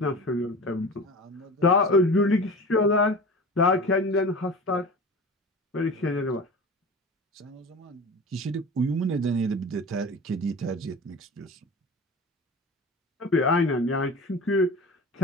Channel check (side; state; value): both; normal; correlation 0.35